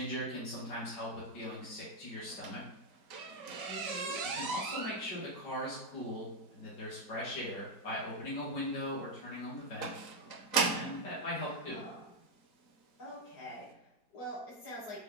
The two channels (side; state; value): right; late; 4.0 ms